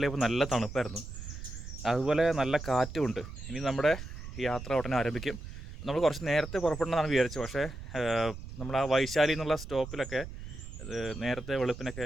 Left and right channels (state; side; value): noise; right; rumble, 10 dB below the sound